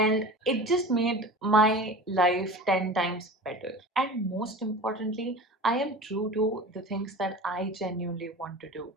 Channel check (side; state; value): both; normal; correlation 0.35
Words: it just made my life 10 times better. And most importantly, I am true to the things that I genuinely want to do,